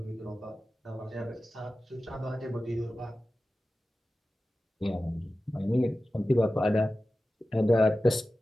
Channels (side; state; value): both; normal; correlation 0.94